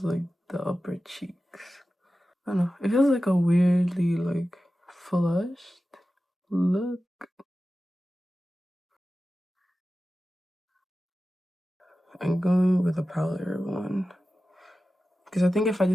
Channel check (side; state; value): both; normal; correlation 0.94